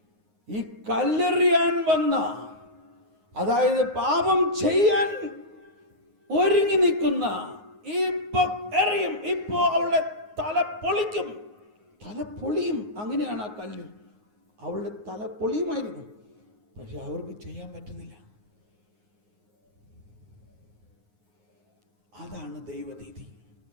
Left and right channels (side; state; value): left; late; 9.5 ms